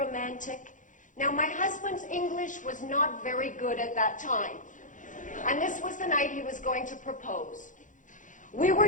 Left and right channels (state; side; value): late; right; 0.37 ms